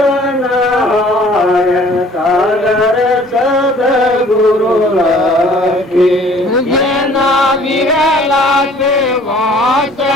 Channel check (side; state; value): both; normal; correlation 0.53